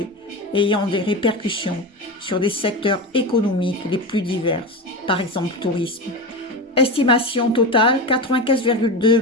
ayant des répercussions sur des secteurs économiques les plus divers, par exemple le tourisme. Estimation totale, 95,2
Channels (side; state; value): both; normal; correlation 0.22